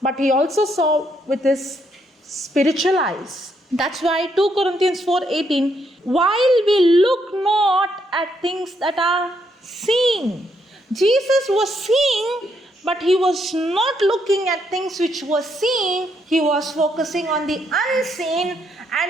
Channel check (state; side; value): normal; both; correlation 0.75